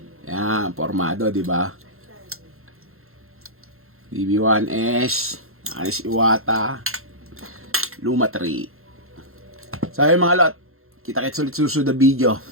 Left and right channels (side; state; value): left; late; 0.62 ms